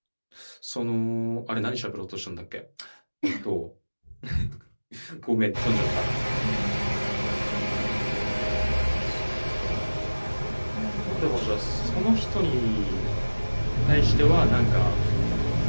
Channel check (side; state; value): both; inverted; correlation -1.00